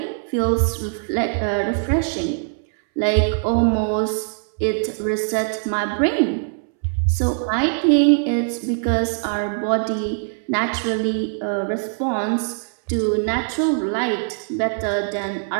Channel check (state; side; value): silent; left; 64 dB below the other